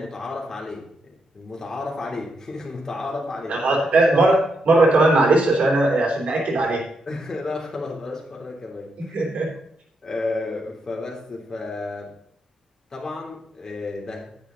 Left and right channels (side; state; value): both; normal; correlation 0.81